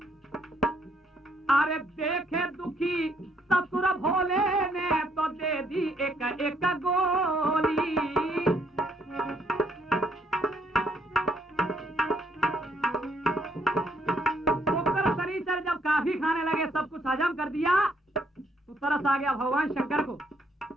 अरे देखे दुखी ससुर भोले ने तो दे दी एक एक गोली। शुक्र शनिचर जब काफी खाने लगे, सब कुछ हजम कर दिया, तो तरस आ गया भगवान शंकर को।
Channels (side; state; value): both; normal; correlation 0.70